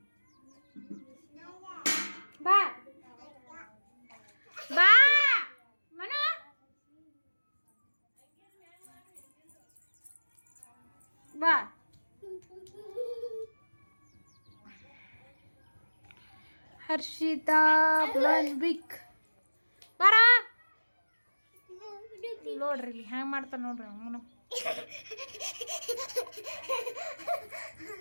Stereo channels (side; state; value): both; inverted; correlation -1.00